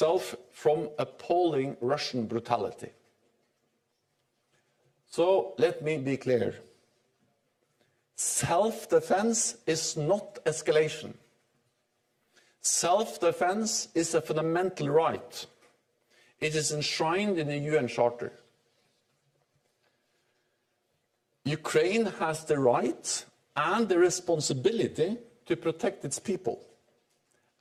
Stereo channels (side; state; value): both; identical; correlation 1.00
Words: from appalling Russian brutality. So let me be clear. Self-defense is not escalation. Self-defense is a fundamental right. It is enshrined in the UN Charter. Ukraine has the right and the responsibility to protect its people.